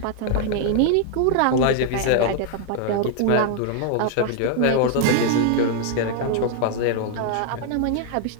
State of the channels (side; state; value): both; different; correlation 0.00